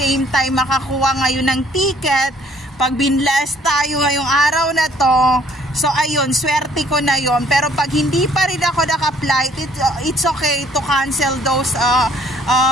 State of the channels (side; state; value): both; normal; correlation 0.61